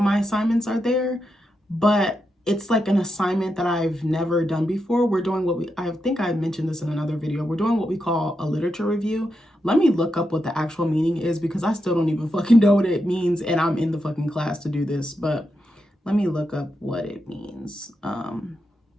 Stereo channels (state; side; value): normal; both; correlation 0.85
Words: my assignments are there, but it's like an assignment that I've never done before. We're doing I think I mentioned this in another video. We're doing what we call a literature review. Let me look up what the actual meaning is because I still don't even fucking know what it means and I'm in the fucking class to do this, but let me look up what it means. Hold